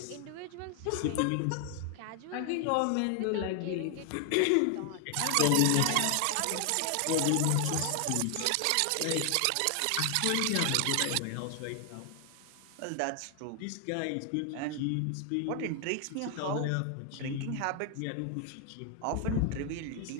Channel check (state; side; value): different; both; correlation 0.00